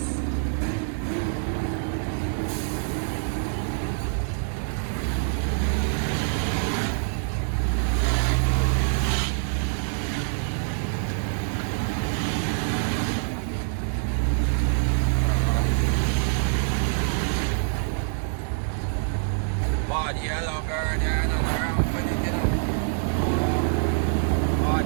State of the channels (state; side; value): silent; left; digital silence